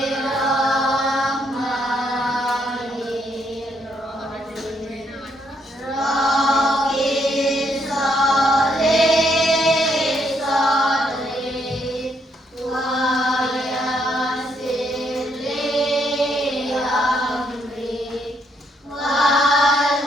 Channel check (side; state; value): both; normal; correlation 0.73